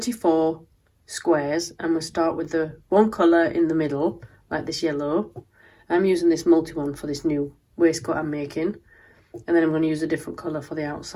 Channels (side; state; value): both; identical; correlation 1.00